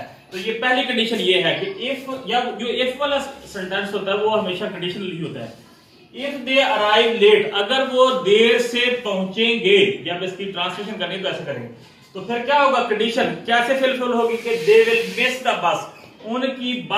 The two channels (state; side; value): identical; both; correlation 1.00